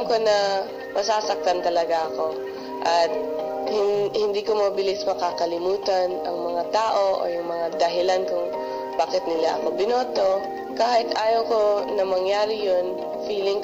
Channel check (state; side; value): identical; both; correlation 1.00